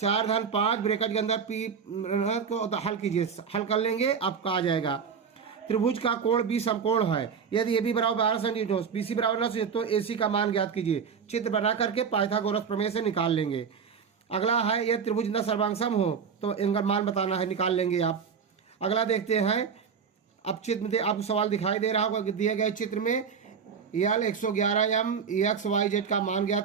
धन 5 ब्रैकेट के अंदर पी को हल कीजिए, हल कर लेंगे, आपका आ जाएगा। त्रिभुज का कोण बी समकोण है, यदि ए बी बराबर 12 सेंटीमीटर, बी सी बराबर 9 तो ए सी का मान ज्ञात कीजिए। चित्र बना करके पाइथागोरस प्रमेय से निकाल लेंगे। अगला है, यह त्रिभुज न सर्वांगसम हो तो इनका मान बताना है, निकाल लेंगे आप। अगला देखते हैं, अब चित्र में आपको सवाल दिखाई दे रहा होगा, दिए गए चित्र में यल 111m XYZ का मान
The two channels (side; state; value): left; quieter; 6.5 dB